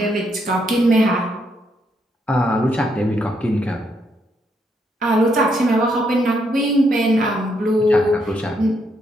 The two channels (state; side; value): normal; both; correlation 0.76